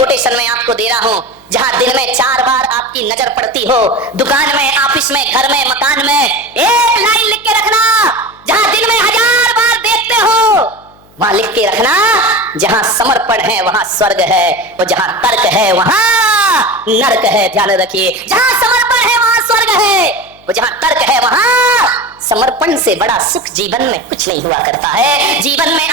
में आपको दे रहा हूँ। जहां दिन में 4 बार आपकी नजर पड़ती हो, दुकान में, ऑफिस में, घर में, मकान में, एक लाइन लिख के रखना। जहां दिन में 1000 बार देखते हो वहां लिख के रखना, जहां समर्पण है वहां स्वर्ग है, और जहां तर्क है वहां नरक है। ध्यान रखिए, जहां समर्पण है वहां स्वर्ग है, और जहां तर्क है वहां समर्पण से बड़ा सुख जीवन में कुछ नहीं हुआ करता है। जीवन में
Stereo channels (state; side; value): noise; left; hum, 28 dB below the sound